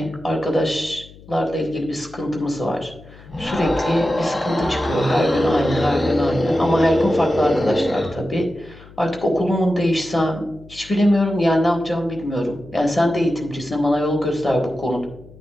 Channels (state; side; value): noise; left; hum, 21 dB below the sound